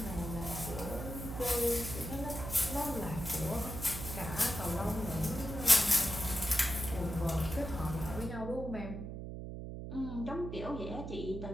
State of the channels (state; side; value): noise; right; hum, 7 dB below the sound